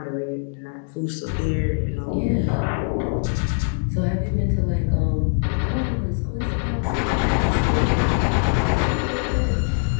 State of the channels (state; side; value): silent; right; 58 dB below the other